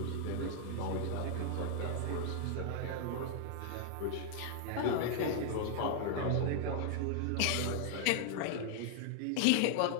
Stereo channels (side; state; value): both; different; correlation 0.00